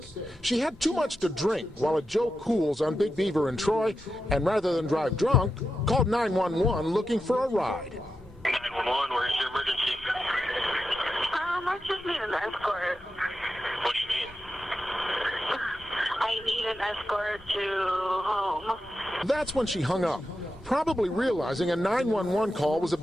She had too much to drink while at Joe Cool's on Big Beaver in Troy, and rather than drive drunk, called 911 looking for a ride. 911, where's your emergency? I just need an escort. What do you mean? I need an escort to home. That's when she hung up, probably realizing a 911 call was a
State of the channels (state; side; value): normal; both; correlation 0.89